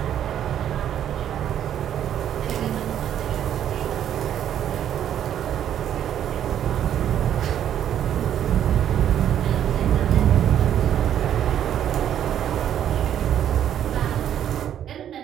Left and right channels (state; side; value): quieter; left; 10.3 dB